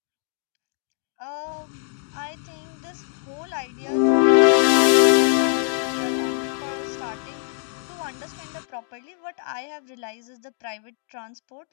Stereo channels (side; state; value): right; silent; 63 dB below the other